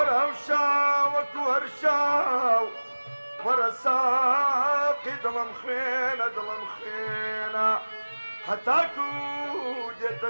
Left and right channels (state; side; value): inverted; both; correlation -1.00